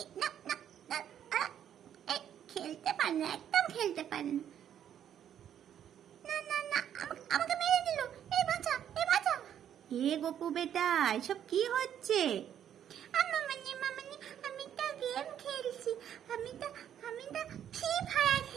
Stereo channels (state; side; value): quieter; left; 9.8 dB